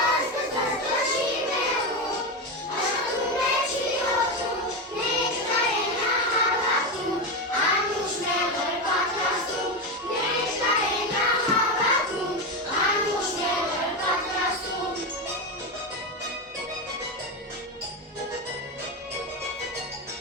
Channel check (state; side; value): normal; both; correlation 0.14